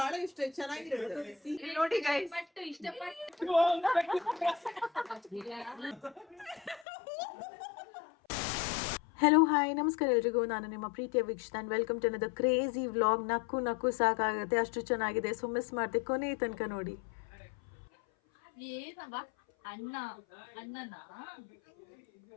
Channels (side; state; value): right; drops out; at 6.9 s